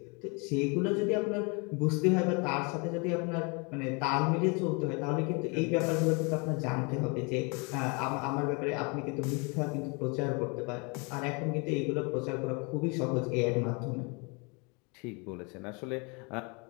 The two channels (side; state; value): right; quieter; 31.6 dB